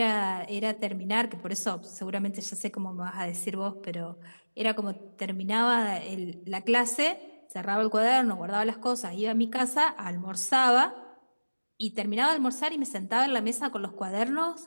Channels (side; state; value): both; inverted; correlation -1.00